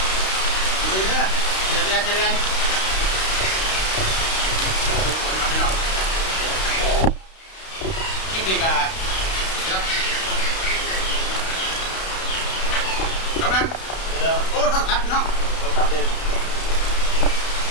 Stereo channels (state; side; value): late; right; 32 ms